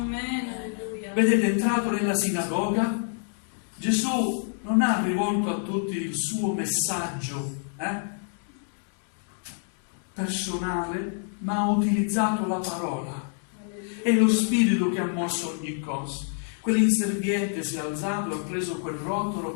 Alleluia. Vedete, è entrato nella sinagoga, Gesù non ha rivolto a tutti il suo messaggio personale, ma ha utilizzato la parola. È lo Spirito che ha mosso ogni cosa. Quell'inserviente si è alzato e ha preso quel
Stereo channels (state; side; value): silent; right; 55 dB below the other